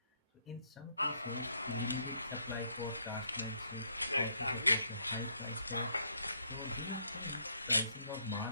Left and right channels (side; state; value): both; inverted; correlation -0.71